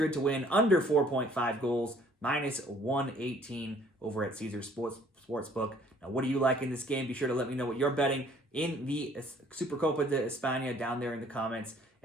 to win under 4.5 goals, minus 118 over at Caesars Sportsbook. Now, what do you like in this game? Be sure to let me know what you're betting in the Supercopa de Espana down there in the comments,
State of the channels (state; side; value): normal; both; correlation 0.58